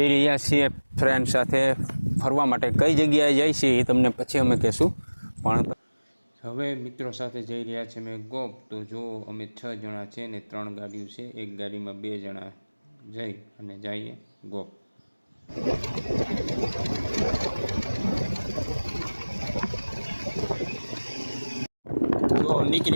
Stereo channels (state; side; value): inverted; both; correlation -1.00